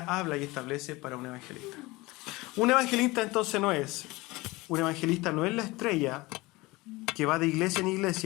habla y establece para un evangelista. Un evangelista entonces no es la estrella que va de iglesia en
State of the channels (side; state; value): right; quieter; 21.7 dB